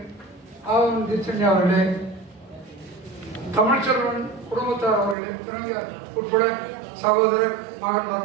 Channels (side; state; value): left; drops out; at 5.2 s